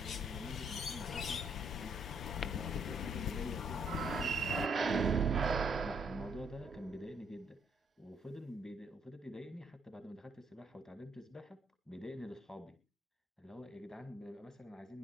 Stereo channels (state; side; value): normal; both; correlation 0.69